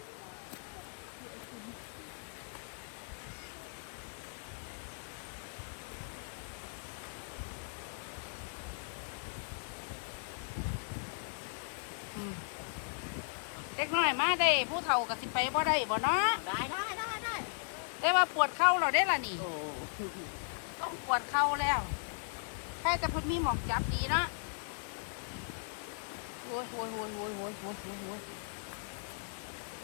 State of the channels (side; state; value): right; silent; digital silence